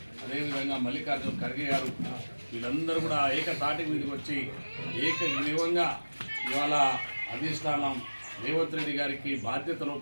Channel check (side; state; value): both; inverted; correlation -1.00